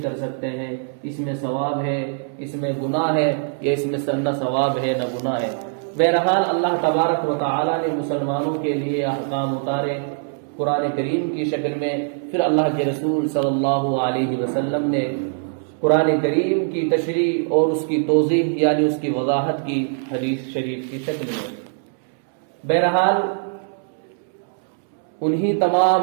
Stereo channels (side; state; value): left; silent; 64 dB below the other